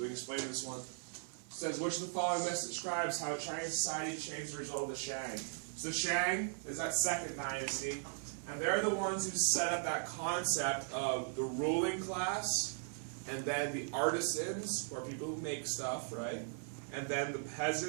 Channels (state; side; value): silent; left; 52 dB below the other